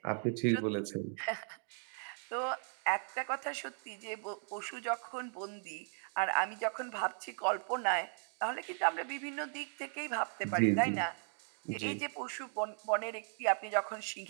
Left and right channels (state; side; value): silent; left; 53 dB below the other